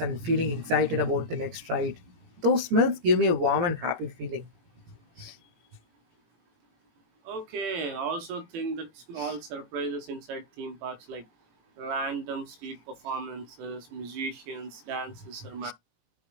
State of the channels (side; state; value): left; late; 18 ms